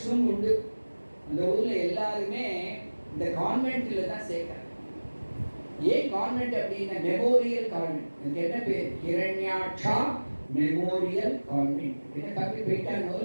உண்டு. அந்த ஊர்ல எல்லாருமே இந்த கான்வென்ட்ல தான் சேர்க்கிறாங்க. ஏன் கான்வென்ட் அப்படின்னா மெமோரியல் கான்வென்ட். இதுக்கு என்ன பேர்? ஹிரண்யாட்சா மெமோரியல் கான்வென்ட். என்ன தப்பி போயிட்டானோ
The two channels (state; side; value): inverted; both; correlation -1.00